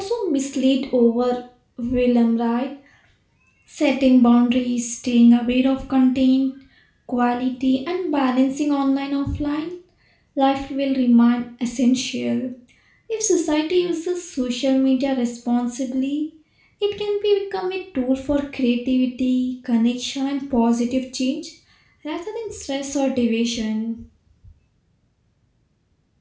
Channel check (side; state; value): both; identical; correlation 1.00